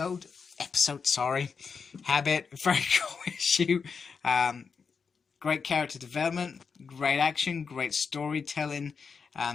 Habit. Very cool issue. Great character development, great action, great storytelling.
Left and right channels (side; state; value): right; quieter; 5.6 dB